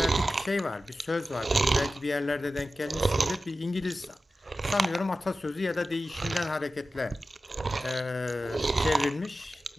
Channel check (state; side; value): normal; both; correlation 0.93